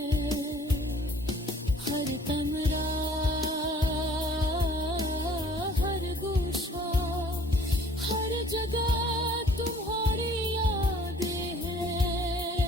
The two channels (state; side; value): normal; both; correlation 0.55